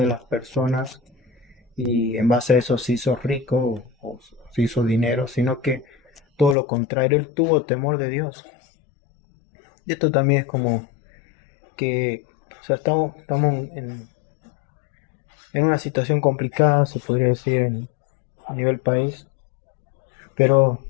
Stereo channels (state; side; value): drops out; right; at 6.6 s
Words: las personas y en base a eso se hizo rico o se hizo dinero, sino que todo lo contrario, él tuvo temor de Dios. Y esto también es como que, o sea, estamos en una situación complicada, se podría decir, a nivel país, pero